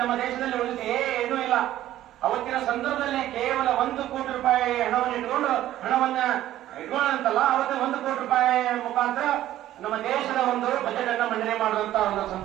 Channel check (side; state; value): left; quieter; 13.4 dB